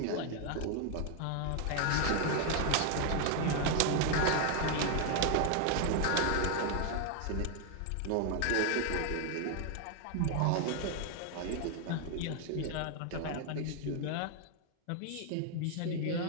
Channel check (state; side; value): different; both; correlation 0.01